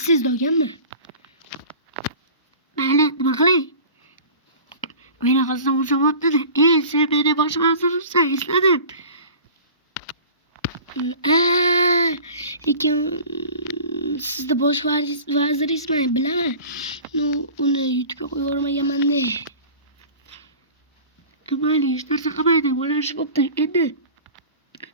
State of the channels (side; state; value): both; inverted; correlation -0.40